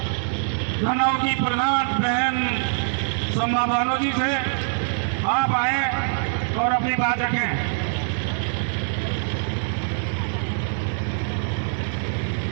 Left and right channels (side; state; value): left; silent; 63 dB below the other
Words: धनाव की प्रधान बहन सम्मा बानो जी से, आप आए और अपनी बात रखें।